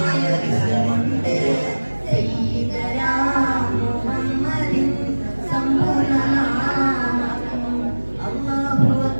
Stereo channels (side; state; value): both; inverted; correlation -1.00